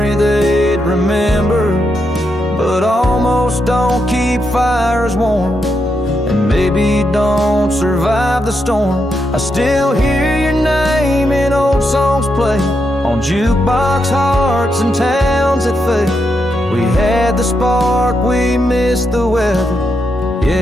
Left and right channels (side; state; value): both; normal; correlation 0.83